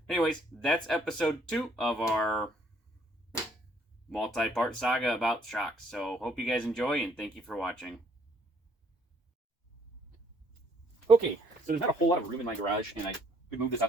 anyways, that's episode 2 of our multi-part saga about shocks. So hope you guys enjoy, and thank you for watching. Okay, so there's not a whole lot of room in my garage, and I could move this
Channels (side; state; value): both; normal; correlation 0.65